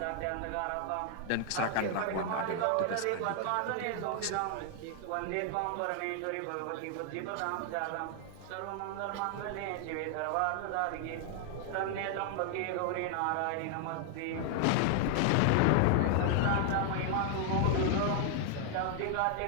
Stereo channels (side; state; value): both; different; correlation 0.00